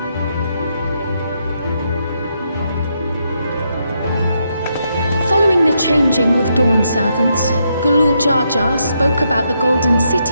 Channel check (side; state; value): both; inverted; correlation -0.79